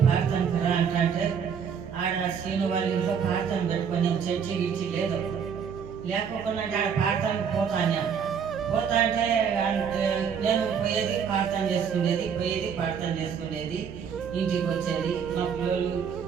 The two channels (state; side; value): quieter; left; 7.0 dB